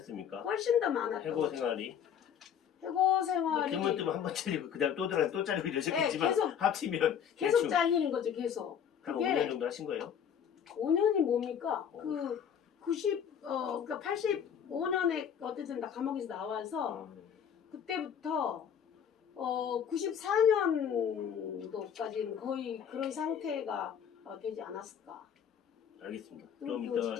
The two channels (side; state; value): right; quieter; 8.2 dB